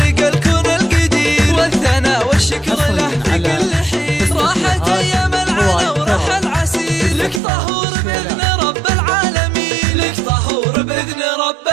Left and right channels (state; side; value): drops out; left; at 7.4 s